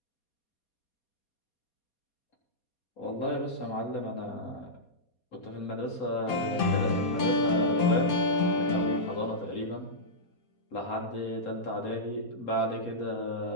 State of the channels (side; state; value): right; late; 4.2 ms